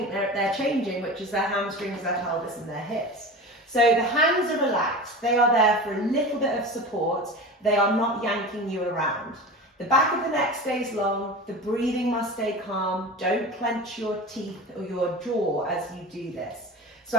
they're changing, which is their hamstrings, their pelvis and their hips. So the hands are relaxed, they are there for a little bit of support, they are not yanking you around. The back of the neck stays long, the breathing must stay calm, don't clench your teeth or your jaw as you do this. So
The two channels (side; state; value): both; normal; correlation 0.32